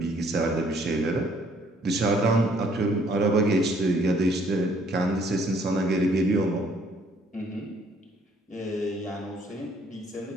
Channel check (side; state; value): both; normal; correlation 0.63